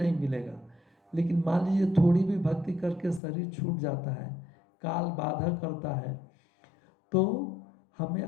मिलेगा। लेकिन मान लीजिए थोड़ी भी भक्ति करके शरीर छूट जाता है, काल बाधा करता है, तो हमें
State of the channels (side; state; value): right; drops out; at 3.2 s